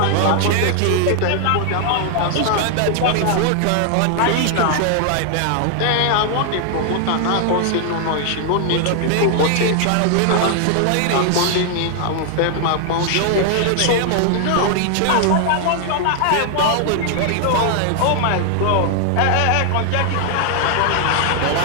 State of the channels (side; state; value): both; different; correlation 0.00